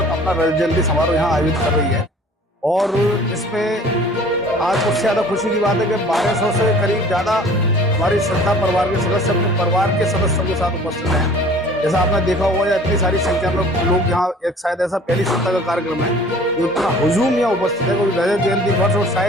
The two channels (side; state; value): both; normal; correlation 0.49